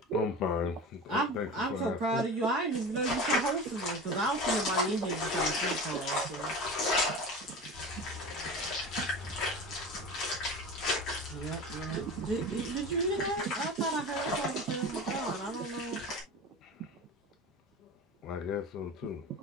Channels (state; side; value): normal; both; correlation 0.31